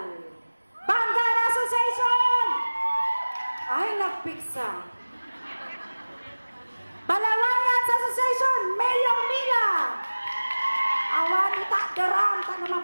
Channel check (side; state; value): both; inverted; correlation -1.00